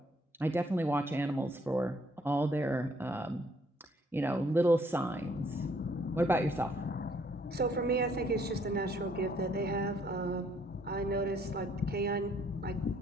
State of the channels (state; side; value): normal; both; correlation 0.66